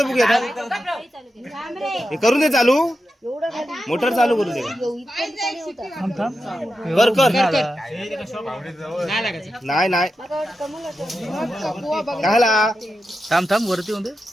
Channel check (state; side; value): normal; both; correlation 0.89